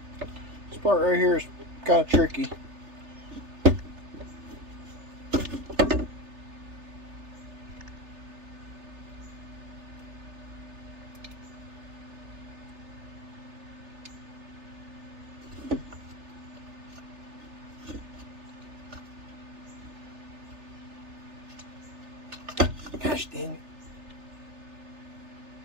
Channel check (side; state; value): left; late; 3.3 ms